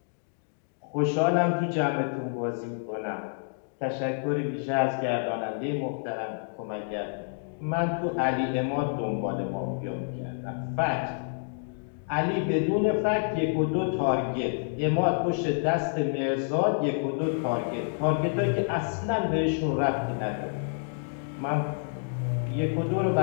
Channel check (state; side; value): silent; right; digital silence